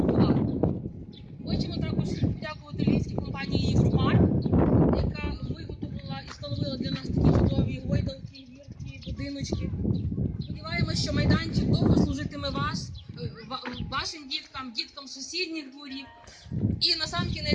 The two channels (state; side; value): identical; both; correlation 1.00